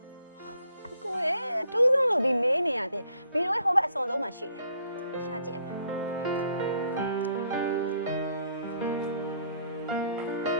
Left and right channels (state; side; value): inverted; both; correlation -0.66